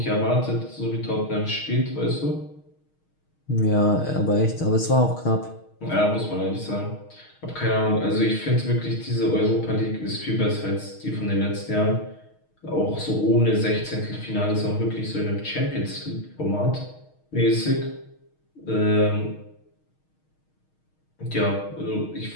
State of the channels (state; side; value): late; right; 6.4 ms